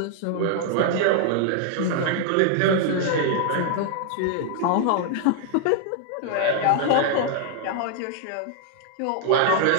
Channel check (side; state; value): both; different; correlation 0.00